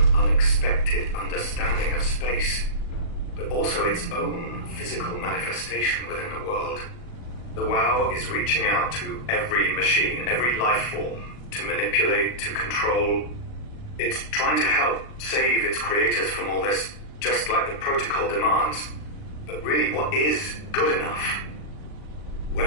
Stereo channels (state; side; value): late; right; 39 ms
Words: unexpected understanding of space, but also its own physical manifestation within the world. The WoW is reaching out to every machine, every life form, to manipulate, to control. It's trying to help save its creators from all this, just like the protocol demands. But really, what is good enough?